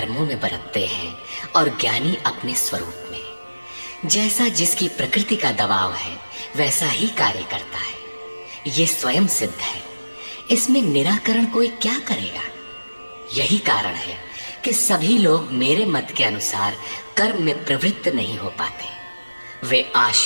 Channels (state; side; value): inverted; both; correlation -1.00